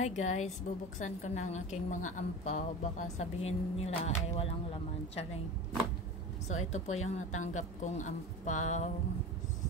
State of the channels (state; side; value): normal; both; correlation 0.31